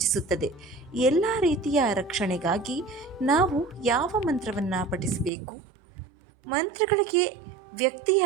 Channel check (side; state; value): left; drops out; at 5.3 s